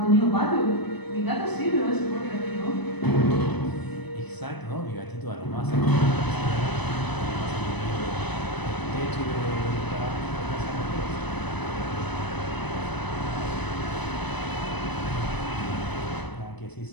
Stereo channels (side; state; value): right; late; 1.0 ms